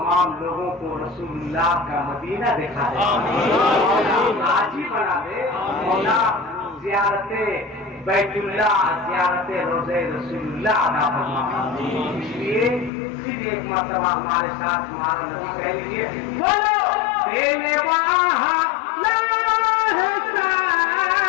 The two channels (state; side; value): drops out; right; at 12.9 s